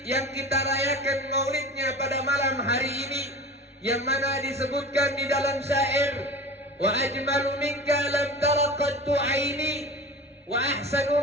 yang kita rayakan maulidnya pada malam hari ini, yang mana disebutkan di dalam syair, wa ajmalu minka lam tara qattu aini wa ahsanu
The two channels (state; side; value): normal; both; correlation 0.34